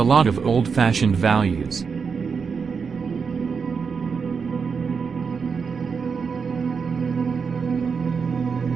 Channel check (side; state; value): left; quieter; 5.7 dB